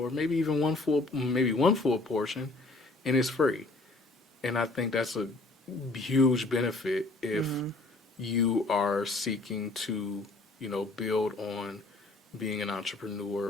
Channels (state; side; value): quieter; right; 3.1 dB